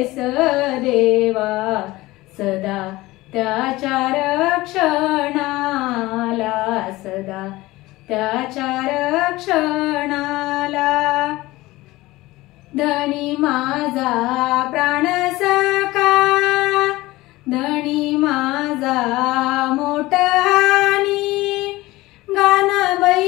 देवा सदा त्याच्या रक्षणाला, सदा त्याच्या रक्षणाला, धनी माझा प्राण सखा, धनी माझा मोठहानी, गान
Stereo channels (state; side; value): quieter; right; 19.2 dB